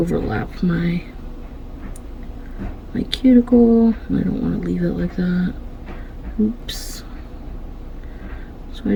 my cuticle and I don't want to leave it like that. Oops. So I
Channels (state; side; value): identical; both; correlation 1.00